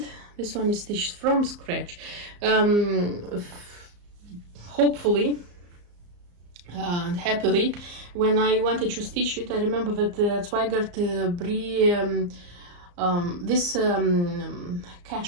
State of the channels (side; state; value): left; late; 34 ms